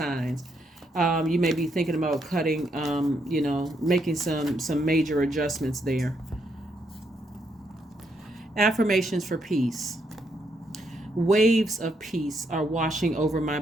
You may be thinking about cutting, making some major adjustments there. Affirmations for peace. Waves of peace are washing over my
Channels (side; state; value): both; normal; correlation 0.76